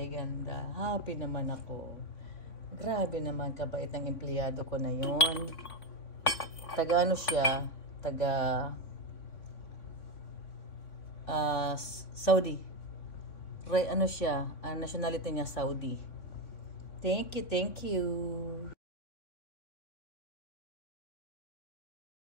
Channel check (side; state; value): right; late; 3.6 ms